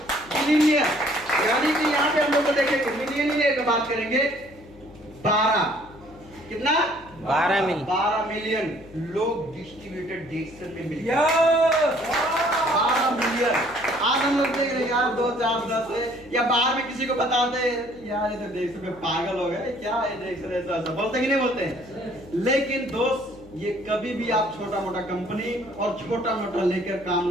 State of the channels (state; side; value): noise; left; hum, 23 dB below the sound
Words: मिलीनियर, यानी कि यहाँ पे हम लोग देखेंगे मिलीनियर की बात करेंगे। 12 कितना? 12 मिलियन लोग डिस्ट्रीब्यूटेड डिएक्शन में मिल गए। 12 मिलियन। आज हम लोग देख रहे हैं यार 2, 4, 10 या बाहर में किसी को बताते यार ये तो डिएक्शन में पागल हो गए, क्या है डिएक्शन, ऐसा बोलते कि नहीं बोलते? लेकिन दोस्त, ये कभी भी आप छोटा मोटा कंपनी और छोटा मोटा लेकर काम